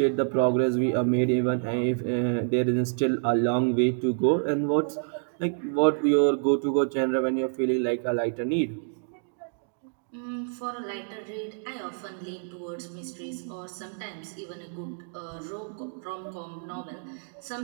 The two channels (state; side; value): silent; left; digital silence